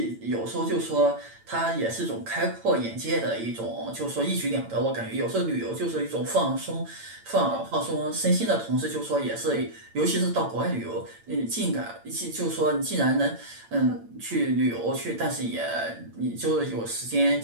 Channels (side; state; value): left; late; 8.9 ms